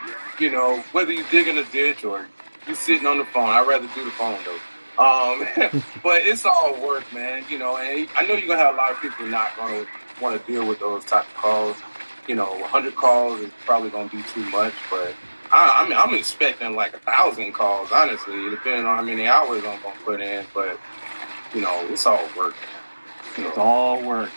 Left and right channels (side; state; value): both; inverted; correlation -1.00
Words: Whether you dig in a ditch or you sitting on the phone. I'd rather do the phone though. But it's all work, man. And I know you're gonna have a lot of people not gonna want to deal with those type of calls. 100 calls is probably gonna be too much, but I'm expecting 1,000 calls, honestly, depending on how many hours I'm gonna put in. But it's all work. It's all work.